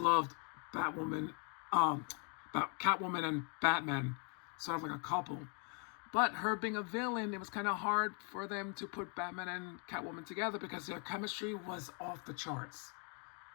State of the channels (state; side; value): quieter; right; 38.7 dB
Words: Catwoman and Batman, sort of like a couple. But her being a villain, it was kind of hard for them to put Batman and Catwoman together because their chemistry was off the charts.